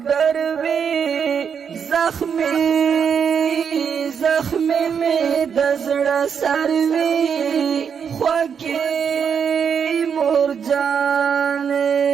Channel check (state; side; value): quieter; left; 7.1 dB